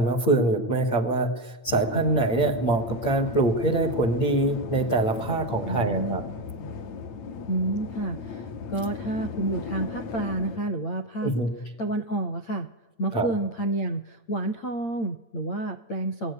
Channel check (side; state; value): right; late; 8.9 ms